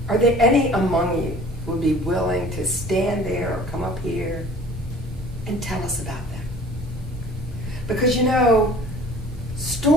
are there any among you who would be willing to stand there or come up here and tell us about them? Because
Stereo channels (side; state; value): both; normal; correlation 0.48